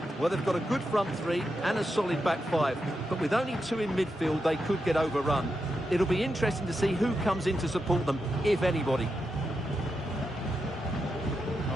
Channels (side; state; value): both; normal; correlation 0.86